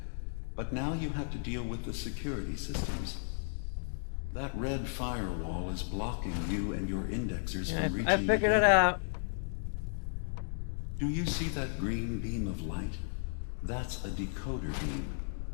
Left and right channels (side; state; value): right; silent; digital silence